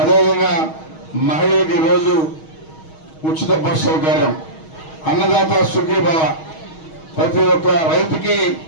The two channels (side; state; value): right; late; 6.3 ms